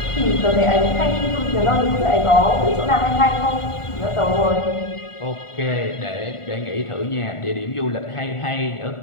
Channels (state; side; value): late; right; 1.5 ms